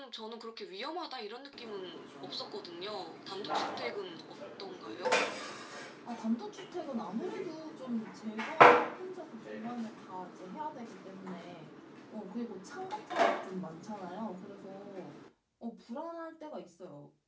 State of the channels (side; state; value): both; identical; correlation 1.00